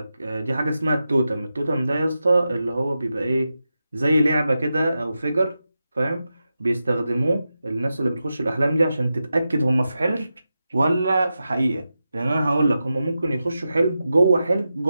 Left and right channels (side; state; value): both; inverted; correlation -0.90